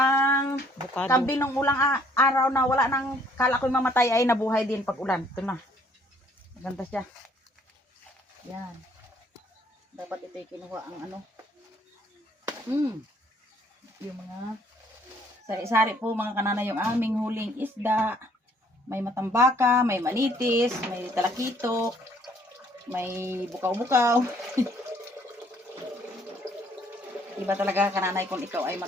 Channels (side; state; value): both; normal; correlation 0.62